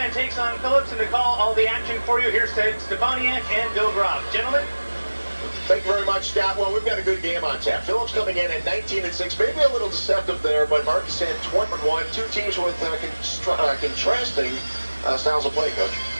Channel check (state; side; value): inverted; both; correlation -1.00